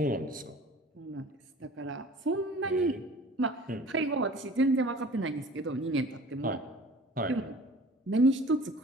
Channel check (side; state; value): both; normal; correlation 0.45